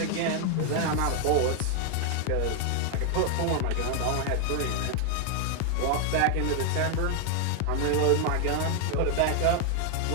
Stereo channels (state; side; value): different; both; correlation 0.00